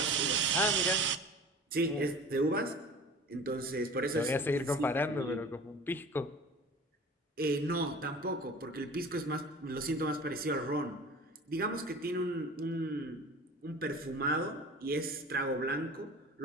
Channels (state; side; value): normal; both; correlation 0.40